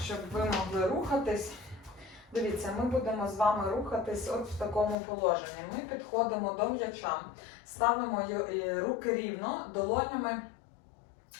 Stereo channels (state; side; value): drops out; right; at 5.0 s